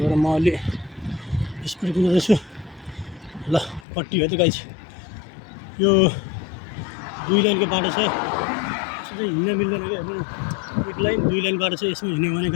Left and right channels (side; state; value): right; drops out; at 3.9 s